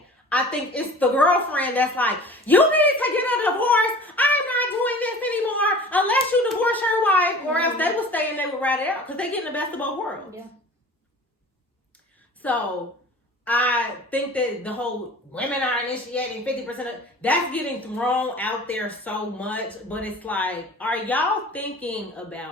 I think it's the girlfriend that's like, you need to get a divorce. I'm not doing this anymore unless you divorce your wife, or else they will stay and they will ride it out because they get the best of both worlds. Yeah. So I think that the whole women are initiating 50% of that's getting thrown out there so much, but it's like, are y'all thinking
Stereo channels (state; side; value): normal; both; correlation 0.42